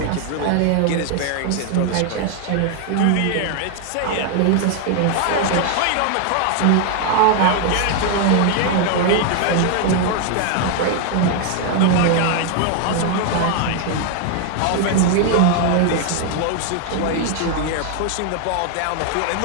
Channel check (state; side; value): different; both; correlation 0.00